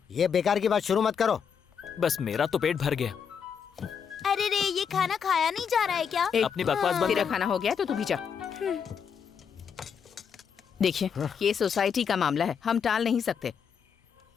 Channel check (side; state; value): right; quieter; 7.1 dB